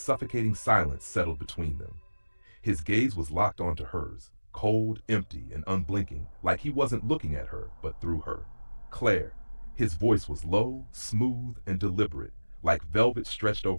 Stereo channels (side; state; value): both; inverted; correlation -1.00